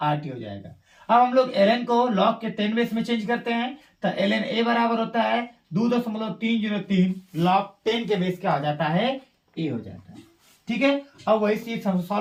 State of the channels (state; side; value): identical; both; correlation 1.00